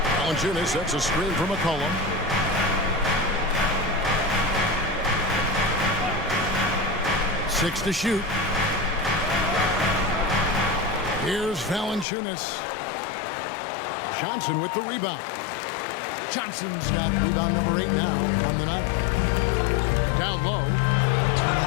Valanciunas sets a screen for McCollum. Six to shoot. Here's Valanciunas. Johnson with the rebound. Johnson's got rebound number 8 now on the night. Down low.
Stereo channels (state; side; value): drops out; right; at 12.1 s